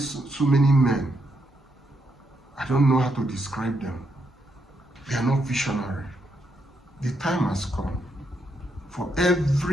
many men, I don't know how to describe them. They are not visionary. The time has come for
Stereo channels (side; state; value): both; normal; correlation 0.79